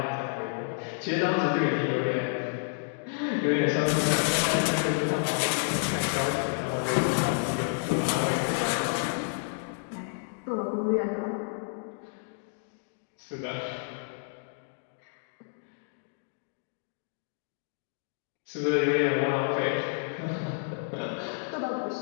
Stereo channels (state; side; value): silent; right; digital silence